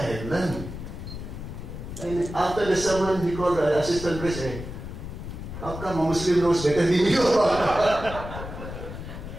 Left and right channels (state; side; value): noise; left; rumble, 9 dB below the sound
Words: learned. And after the sermon, he called the assistant priest, hey, how come a Muslim knows better than you?